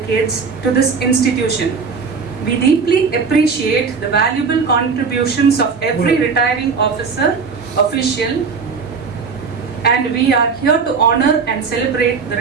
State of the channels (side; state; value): left; quieter; 5.3 dB